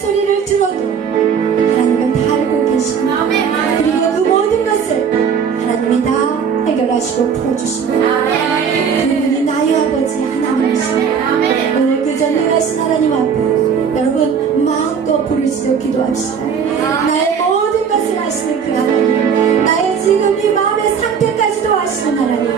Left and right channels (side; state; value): left; quieter; 6.8 dB